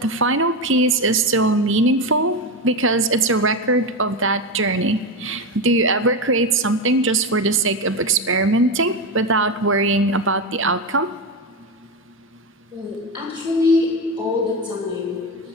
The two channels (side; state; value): both; normal; correlation 0.14